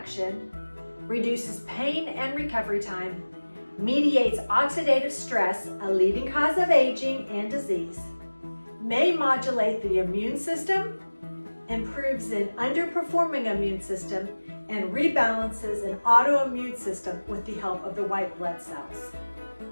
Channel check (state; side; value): inverted; both; correlation -1.00